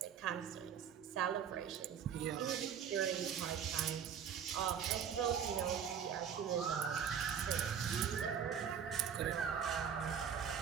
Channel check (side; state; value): left; quieter; 7.9 dB